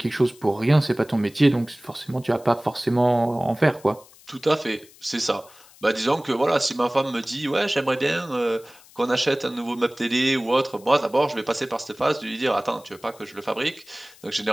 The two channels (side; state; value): left; noise; hiss, 25 dB below the sound